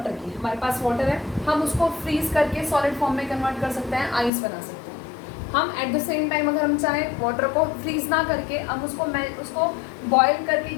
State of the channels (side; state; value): right; drops out; at 4.3 s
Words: की, हमारे पास वाटर है, हम उसको फ्रीज करके सॉलिड फॉर्म में कन्वर्ट कर सकते हैं, आइस बना सकते हैं. हम एट द सेम टाइम अगर हम चाहें वाटर को फ्रीज ना करके हम उसको बॉयल करके